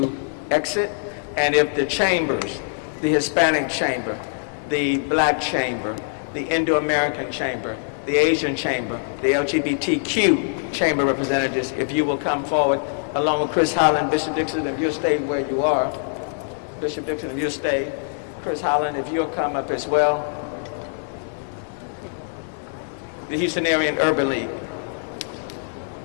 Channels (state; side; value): silent; right; digital silence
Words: exit, and if the chambers, the Hispanic chamber, the Black chamber, the Indo-American chamber, the Asian chamber, the LGBTQ chamber representatives, if you will come forward, along with Chris Holland, Bishop Dixon, if you'll stay where you are. Bishop Dixon, if you'll stay. Chris Holland, if you'll come up as well. The Houstonian Urban League.